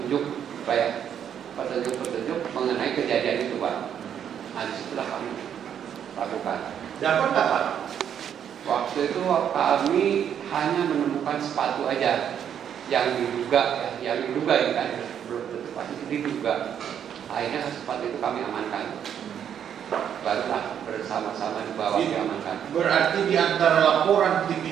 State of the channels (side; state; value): left; quieter; 8.9 dB